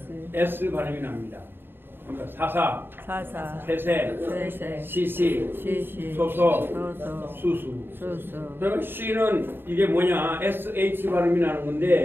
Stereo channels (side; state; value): left; late; 0.10 ms